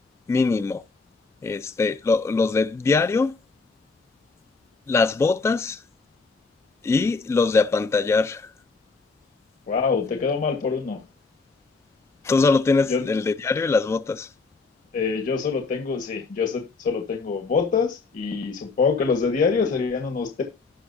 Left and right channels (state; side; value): quieter; right; 4.1 dB